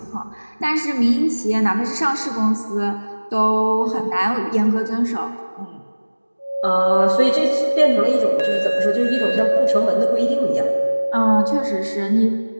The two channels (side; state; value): both; inverted; correlation -1.00